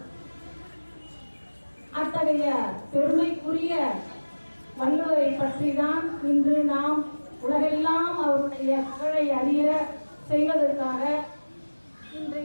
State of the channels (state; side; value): inverted; both; correlation -1.00